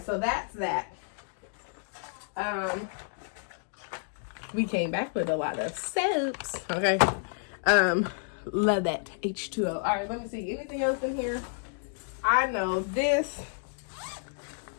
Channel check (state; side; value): silent; right; digital silence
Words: so that's that. We came back with a lot of soaps, okay? Love that H2O. All right, let me see. Anything else in here? I know this.